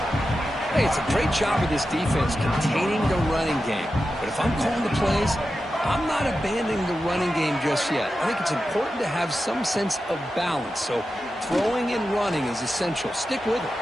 Hey, it's a great job of this defense containing the running game. But if I'm calling the plays, I'm not abandoning the running game just yet. I think it's important to have some sense of balance. So throwing and running is essential. Stick with it.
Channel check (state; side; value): normal; both; correlation 0.91